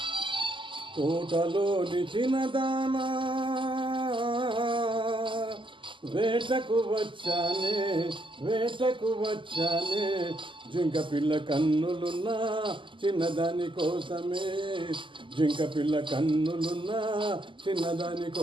తోటలోని చిన్నదానా, వేటకు వచ్చానే, వేటకు వచ్చానే, జింక పిల్ల కన్నులున్నా చిన్నదాని కోసమే, జింక పిల్ల కన్నులున్నా చిన్నదాని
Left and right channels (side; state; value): left; late; 0.24 ms